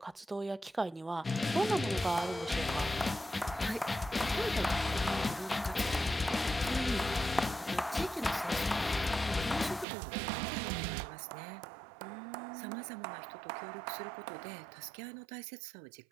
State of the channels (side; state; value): left; drops out; at 9.9 s